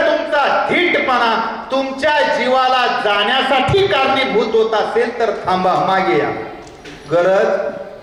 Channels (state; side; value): identical; both; correlation 1.00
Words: तुमचा धीटपणा तुमच्या जीवाला जाण्यासाठी कारणीभूत होत असेल तर थांबा, मागे या,